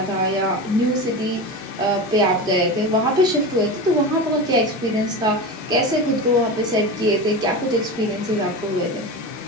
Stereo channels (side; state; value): both; normal; correlation 0.25